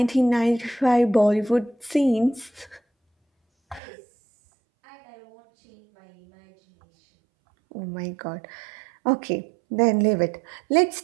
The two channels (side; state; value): left; drops out; at 3.8 s